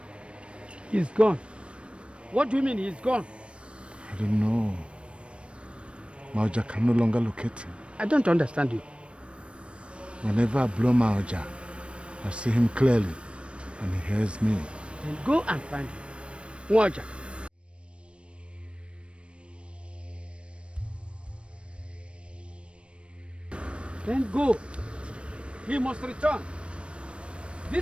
He's gone. What do you mean he's gone? I don't know. Maoja can no longer locate him. I don't understand you. Whenever I blow Maoja, I see him clearly and he hears me. Then go and find him. Maoja. Then go. He must return.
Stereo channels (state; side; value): late; left; 0.059 ms